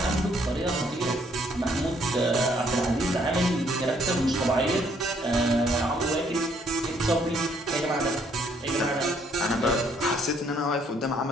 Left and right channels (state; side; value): normal; both; correlation 0.67